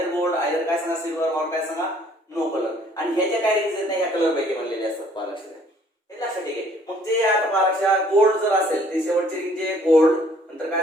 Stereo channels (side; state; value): both; normal; correlation 0.60